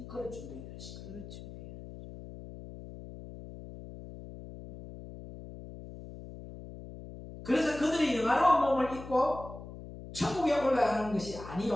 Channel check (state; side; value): noise; left; hum, 13 dB below the sound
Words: 그럴 준비해 될 시기. 그럴 준비해. 그래서 그들이 영화로운 몸을 입고 천국에 올라가는 것이